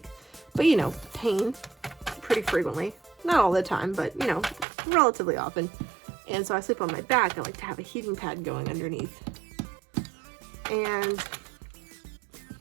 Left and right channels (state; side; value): drops out; left; at 4.7 s